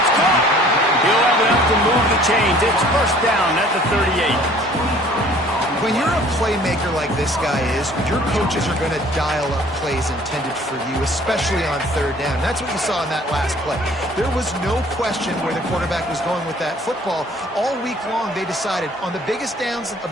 caught. He'll have enough to move the chains. It's first down at the 38. When you're a playmaker like this guy is, your coaches are going to dial up plays intended for you, especially on third down. That's what you saw in that last play. There was no question where the quarterback was going with that football. All week long, they decided on the biggest downs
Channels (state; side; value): normal; both; correlation 0.53